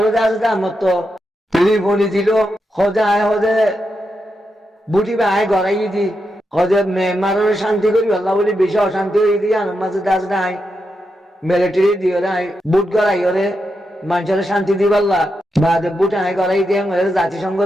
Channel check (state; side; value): normal; both; correlation 0.86